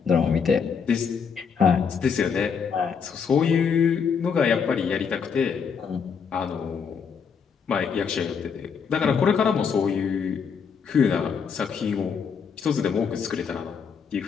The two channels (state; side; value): quieter; right; 6.4 dB